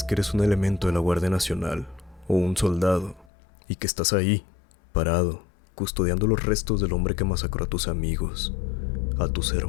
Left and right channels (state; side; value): drops out; right; at 3.3 s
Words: que eres un elemento de la Guardia Nacional, o un soldado, y que estás ahí, parado, custodiando los restos del hombre que masacró a tus amigos, a tus